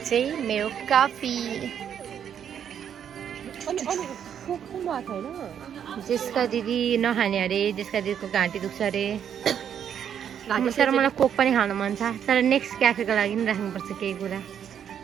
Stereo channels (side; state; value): left; quieter; 8.8 dB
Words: मेरो कफी। जेस्का दिदी नखाने अरे, जेस्का दिदीको घाँटी दुख्छ अरे। तर मलाई कोक पनि खान मन छ, तर नेक्स्ट क्याफेको लागि पनि राख्नुपर्छ केही कुरा।